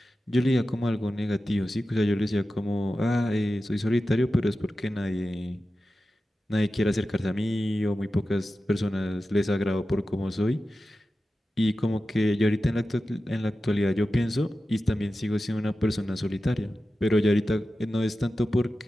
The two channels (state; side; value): normal; both; correlation 0.93